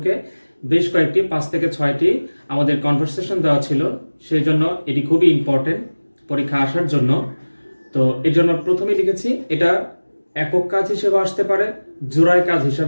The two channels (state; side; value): inverted; both; correlation -1.00